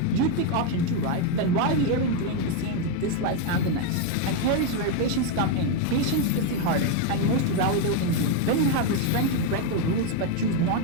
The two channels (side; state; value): both; different; correlation 0.02